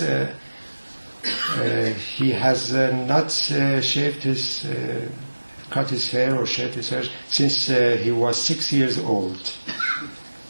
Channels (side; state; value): both; inverted; correlation -1.00